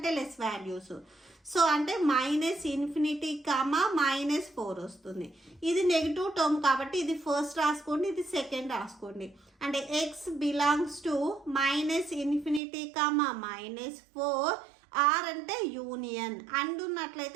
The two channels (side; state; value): left; drops out; at 12.6 s